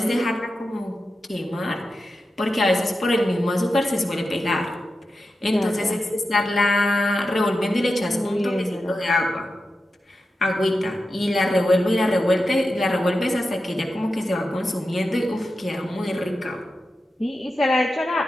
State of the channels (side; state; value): both; normal; correlation 0.91